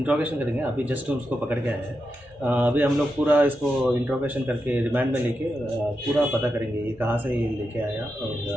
करेंगे। अभी जस्ट उसको पकड़ के आए हैं। अभी हम लोग पूरा इसको इंट्रोगेशन करके रिमांड में लेके पूरा पता करेंगे ये कहाँ से ये लेके आया और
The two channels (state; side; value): normal; both; correlation 0.87